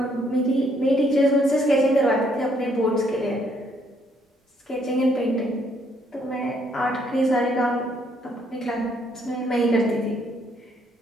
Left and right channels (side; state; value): both; normal; correlation 0.69